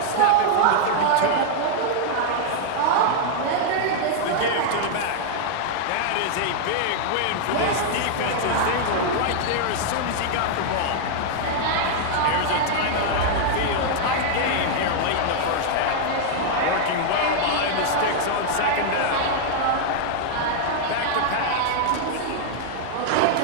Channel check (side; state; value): both; different; correlation -0.01